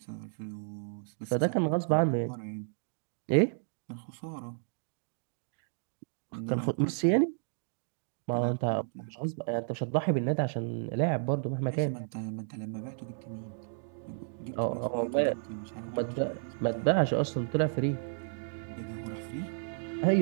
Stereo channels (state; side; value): silent; left; digital silence